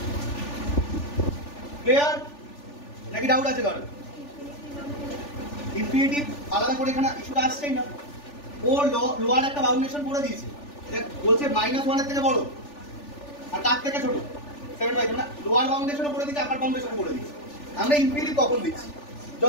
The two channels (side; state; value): right; late; 3.4 ms